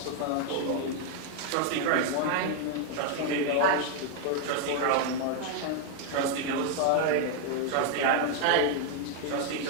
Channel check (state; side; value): different; both; correlation 0.00